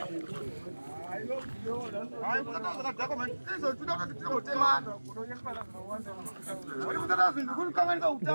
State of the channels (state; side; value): inverted; both; correlation -1.00